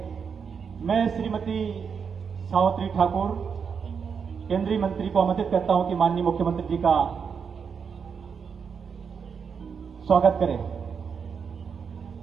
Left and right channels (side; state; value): left; quieter; 6.4 dB